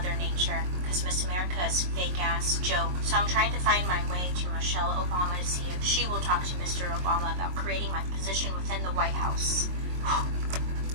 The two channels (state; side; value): late; left; 22 ms